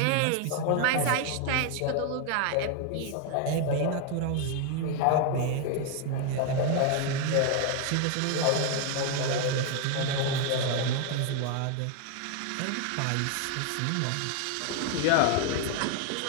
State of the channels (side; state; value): both; different; correlation 0.01